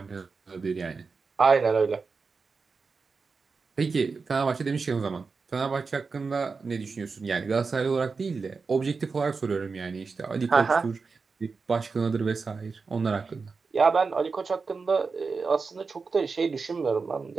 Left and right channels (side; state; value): left; quieter; 4.7 dB